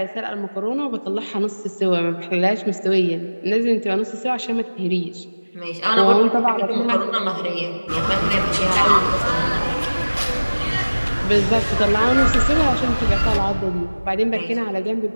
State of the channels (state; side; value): inverted; both; correlation -1.00